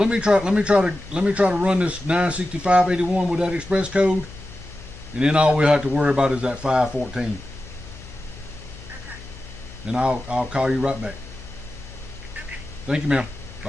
me try to run this $965.81 with that express code, and then all we have to worry about is that 514. And I'll call you right back. Thank you, ma'am.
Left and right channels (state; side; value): noise; left; hum, 17 dB below the sound